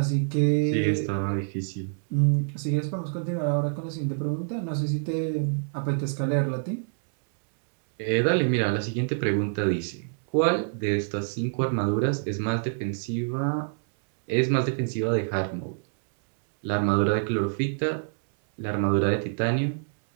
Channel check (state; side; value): silent; left; digital silence